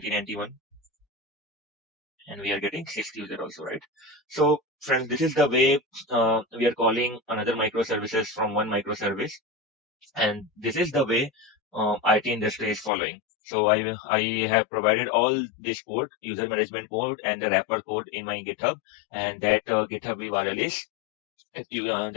and we are getting sixth user also, right? So friends, this is the way we are calling another microservices from one microservice. And this is the way IT industry is following. So I have provided all this code, user management code and the wrapper code in my GitHub, and that GitHub URL is that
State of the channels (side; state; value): right; drops out; at 12.9 s